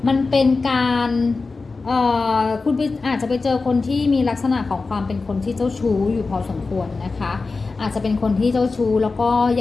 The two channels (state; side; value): quieter; right; 4.0 dB